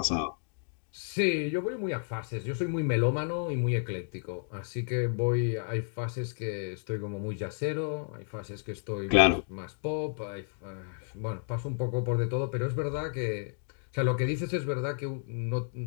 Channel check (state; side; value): silent; right; 57 dB below the other